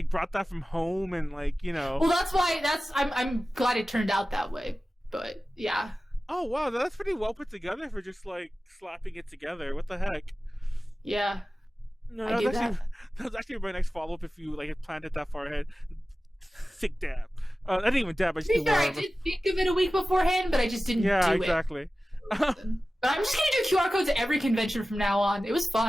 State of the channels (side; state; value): both; normal; correlation 0.95